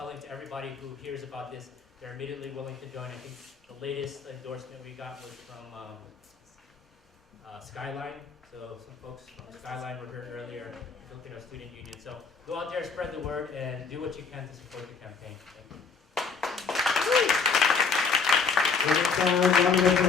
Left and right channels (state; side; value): quieter; right; 5.2 dB